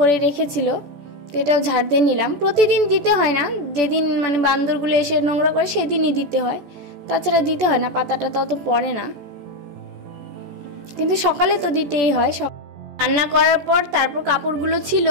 রেখেছিল, তো এটাও ঝাড় দিয়ে নিলাম। প্রতিদিন দিতে হয় না, যেদিন মানে বান্দরগুলো এসে নোংরা করে সেদিনই দিতে হয়, তাছাড়া দিতে হয় না, পাতাটা তত পড়ে না, কিন্তু সকালে তো দিতেই হয়। রান্না করার পর তারপর কাপড়গুলো ছিল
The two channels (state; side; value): late; left; 14 ms